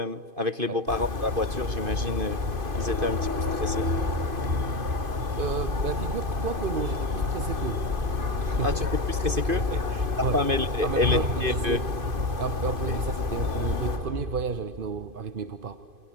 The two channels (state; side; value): late; left; 2.5 ms